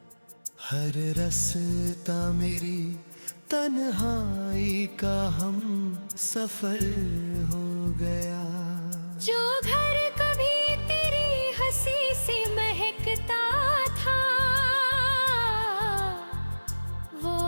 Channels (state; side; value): inverted; both; correlation -1.00